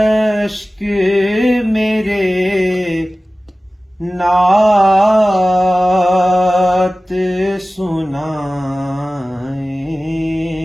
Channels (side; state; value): both; normal; correlation 0.97